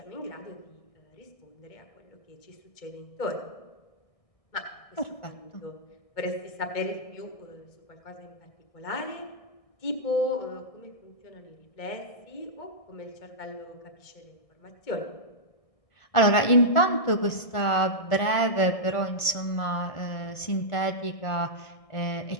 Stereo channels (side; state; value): right; late; 1.5 ms